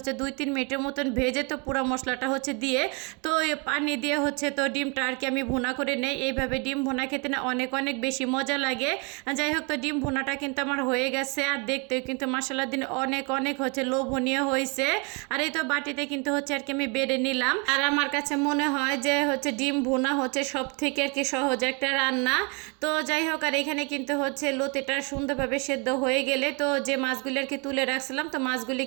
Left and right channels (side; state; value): left; quieter; 32.6 dB